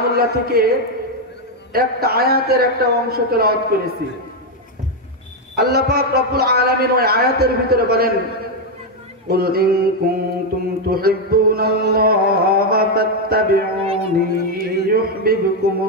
থেকে একটা আয়াতের একটা অংশ তেলাওয়াত করেছি। আল্লাহ পাক রব্বুল আলামিন ওই আয়াতের ভিতরে বলেন, কুল ইন কুনতুম তুহিব্বুনাল্লাহা ফাত্তাবিউনি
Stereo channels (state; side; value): normal; both; correlation 0.03